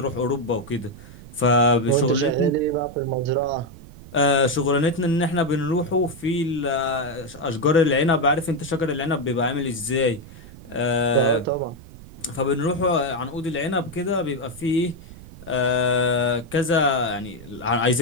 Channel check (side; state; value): right; noise; rumble, 18 dB below the sound